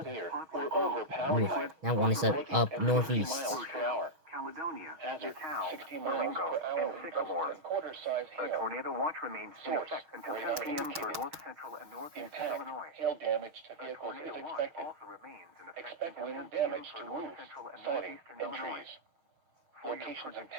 or over Palatine, that one is northeast up at 60 northeast. miles per hour. Hazard 60 miles per hour and quarter-size hail. A tornado watch remains in Source, effect until radar 10 p.m. for indicated. north central and northeastern Impact, Illinois. hail damage to A vehicles is tornado watch expected. also remains in effect Expect until wind 10 p.m. damage for to north roofs, central and siding, northeastern and Illinois. trees. For your Locations protection,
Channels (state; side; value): late; left; 6.4 ms